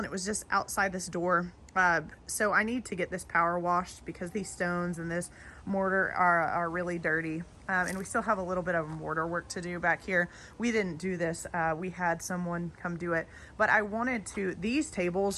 it was just outside this door. So I need to get this power washed because these stones and this mortar are really dirty. And we still have a little bit of mortar work to do back here. We didn't do this. We had someone come do it. But I wanted to, these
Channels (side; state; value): both; identical; correlation 1.00